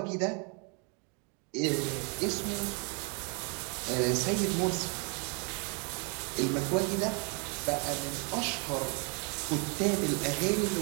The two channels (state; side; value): quieter; left; 35.9 dB